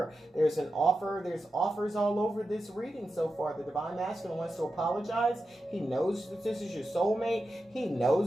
There's an offer. There's offers all over this reading so far. The Divine Masculine wants to apologize. He knows that this is your soulmate. He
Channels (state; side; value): normal; both; correlation 0.90